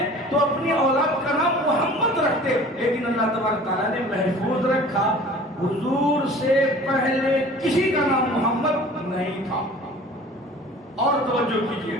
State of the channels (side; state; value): both; normal; correlation 0.45